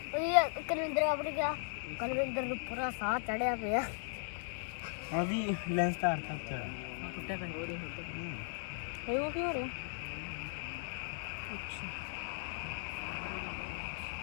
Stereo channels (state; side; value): silent; right; digital silence